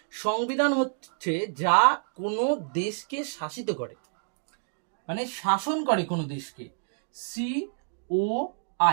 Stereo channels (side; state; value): left; silent; digital silence